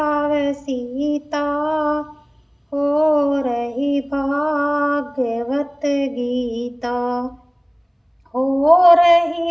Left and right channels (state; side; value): identical; both; correlation 1.00